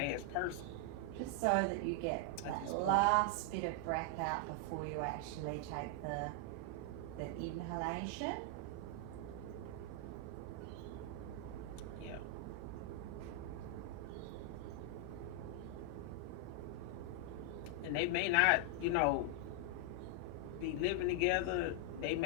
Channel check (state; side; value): different; both; correlation 0.00